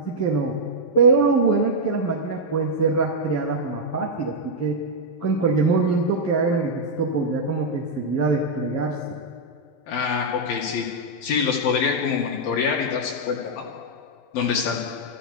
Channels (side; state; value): right; late; 11 ms